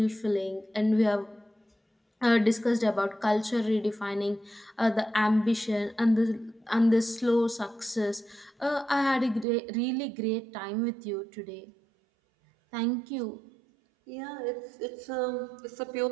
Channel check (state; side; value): drops out; left; at 9.5 s